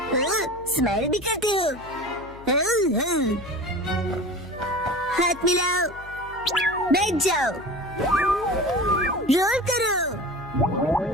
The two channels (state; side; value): noise; left; hum, 19 dB below the sound